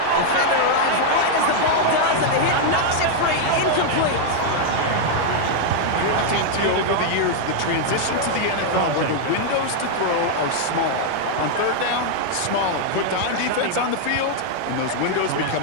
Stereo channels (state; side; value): different; both; correlation 0.00